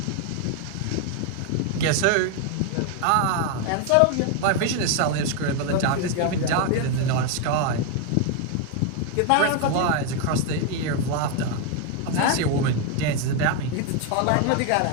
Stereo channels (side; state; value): both; different; correlation 0.01